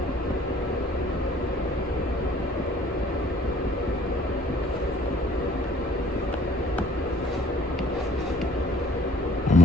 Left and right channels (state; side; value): normal; both; correlation 0.56